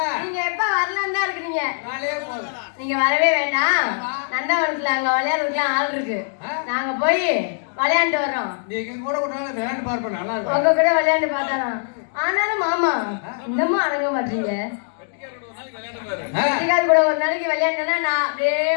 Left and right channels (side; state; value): right; silent; digital silence